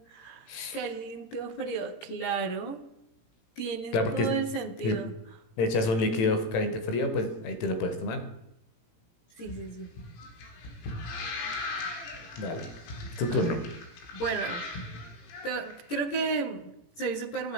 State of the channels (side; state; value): right; late; 18 ms